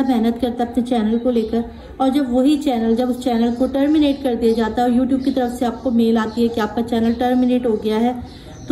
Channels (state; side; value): identical; both; correlation 1.00